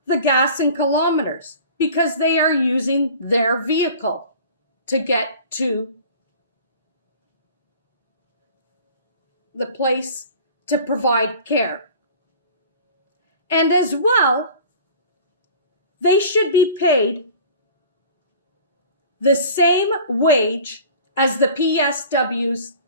the gas and kilometers, because they are using their vehicle to get to the place to provide care. And as well, they should be paid the same wage as the PSWs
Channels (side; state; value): both; inverted; correlation -0.43